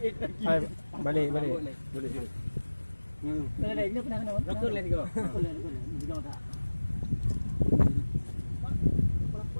Hai, balik. Boleh. Ada ini pernah kena. Rokok let's go. Boleh. Jangan tak.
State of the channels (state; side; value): inverted; both; correlation -1.00